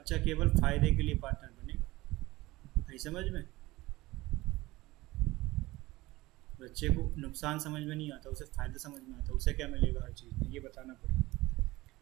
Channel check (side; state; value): left; quieter; 19.4 dB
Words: केवल फायदे के लिए पार्टनर बनेगा। नहीं समझ में? बच्चे को नुकसान समझ में नहीं आता, उसे फ़ायदा समझ में आता, उसे क्या मिलेगा हर चीज़ में, ये बताना पड़ेगा।